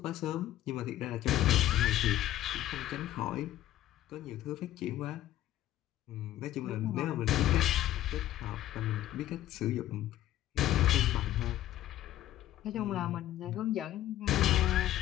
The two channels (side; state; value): right; quieter; 13.6 dB